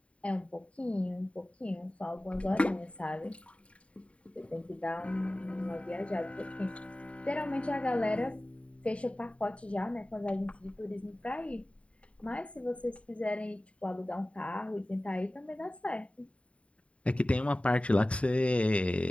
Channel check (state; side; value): late; right; 0.063 ms